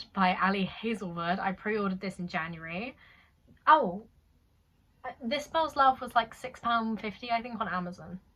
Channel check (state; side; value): identical; both; correlation 1.00